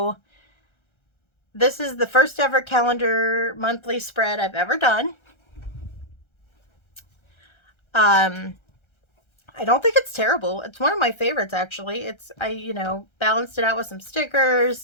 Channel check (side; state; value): right; late; 1.3 ms